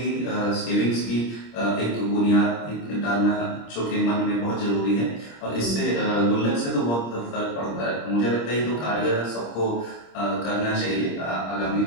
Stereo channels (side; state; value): right; late; 26 ms